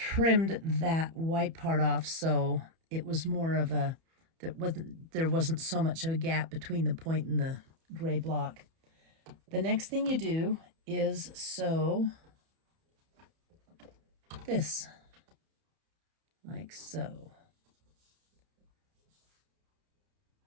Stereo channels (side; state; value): left; late; 31 ms